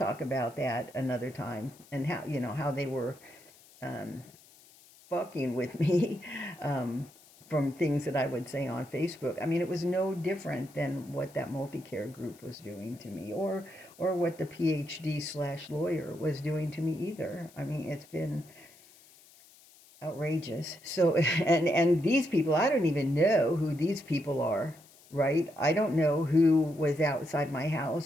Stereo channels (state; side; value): noise; left; hiss, 25 dB below the sound